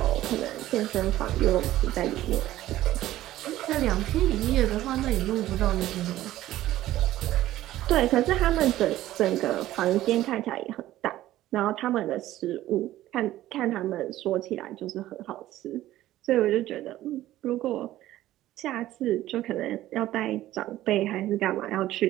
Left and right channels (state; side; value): quieter; left; 14.6 dB